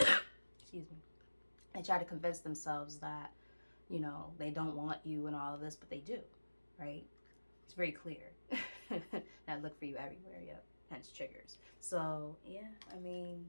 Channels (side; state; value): both; inverted; correlation -1.00